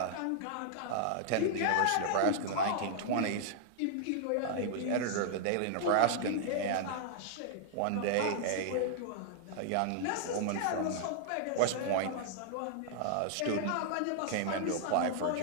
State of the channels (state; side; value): different; both; correlation -0.01